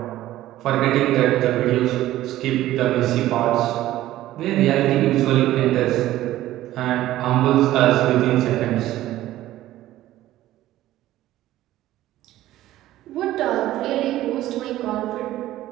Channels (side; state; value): left; quieter; 14.7 dB